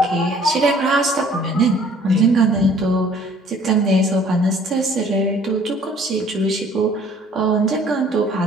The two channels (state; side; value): normal; both; correlation 0.55